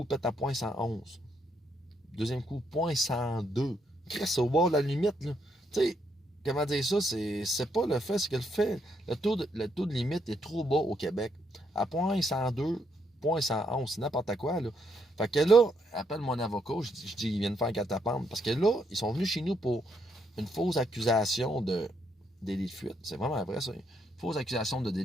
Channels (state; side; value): normal; both; correlation 0.75